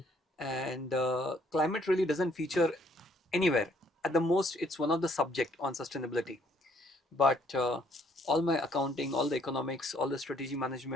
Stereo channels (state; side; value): normal; both; correlation 0.65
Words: And climate really doesn't feature anywhere. At the most, it's one of the subject on sustainability. But all my accounting, all the economics, all the strategy